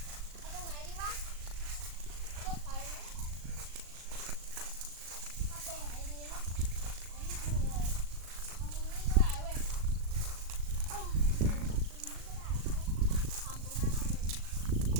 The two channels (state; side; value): late; left; 37 ms